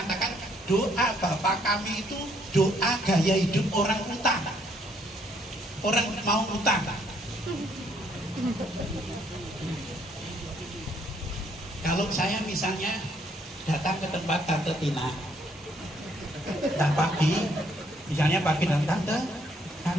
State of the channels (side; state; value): both; normal; correlation 0.68